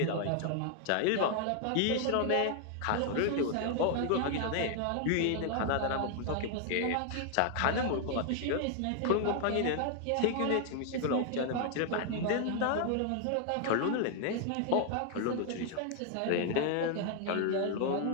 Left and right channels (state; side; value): different; both; correlation 0.00